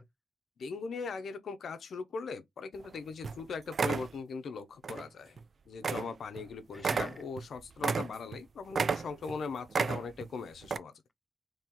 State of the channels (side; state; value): both; normal; correlation 0.81